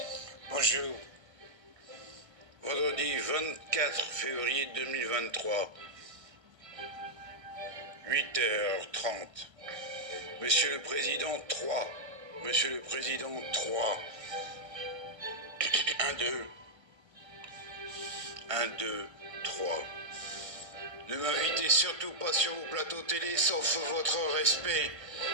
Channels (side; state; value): left; late; 1.3 ms